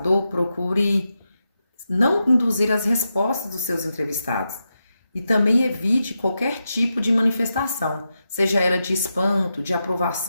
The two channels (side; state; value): both; inverted; correlation -0.88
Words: procure não induzir as respostas dos seus entrevistados e também evite qualquer tipo de manifestação, seja ela de espanto, de